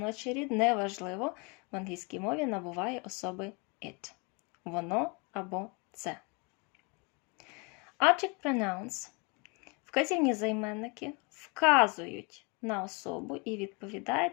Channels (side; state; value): right; quieter; 31.4 dB